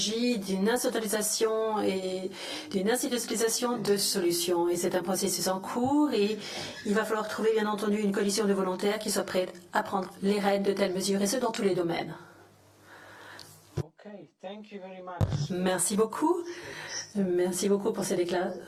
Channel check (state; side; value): identical; both; correlation 1.00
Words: d'une instrumentalisation et d'une institutionnalisation de solutions. Et c'est un processus en cours et il va falloir trouver bien entendu une coalition de volontaires qui soit prête à prendre les rênes de telles mesures et ce dans tous les domaines. Merci beaucoup. Merci beaucoup pour ces